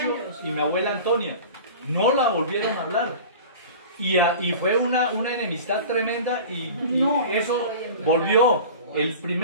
y mi abuela Antonia. No la volvieron a hablar. Y fue una enemistad tremenda y eso volvió. El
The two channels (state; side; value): inverted; both; correlation -0.37